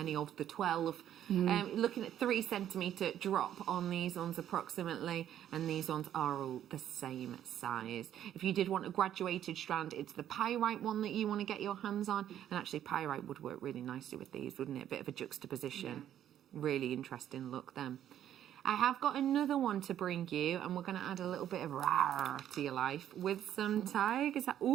of the 12. Looking at 3 centimetre drop on these ones approximately, and these ones are all the same size. If you did want a graduated strand, it's the pyrite one that you want to get your hands on, and actually pyrite would work really nicely with these, wouldn't it? A bit of a juxtaposition. Really interesting look then. I have got another one to bring you, and we're going to add a little bit of rar to your life with some tigers.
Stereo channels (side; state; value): left; quieter; 10.9 dB